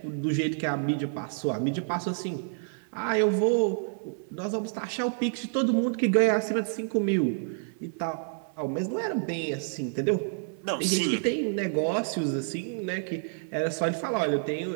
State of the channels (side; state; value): left; silent; 55 dB below the other